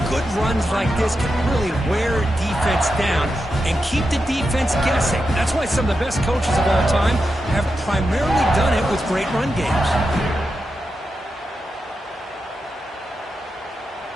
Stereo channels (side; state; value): both; normal; correlation 0.88